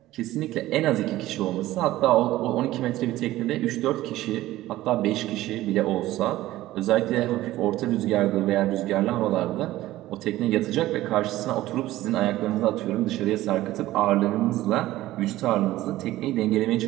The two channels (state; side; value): quieter; left; 15.9 dB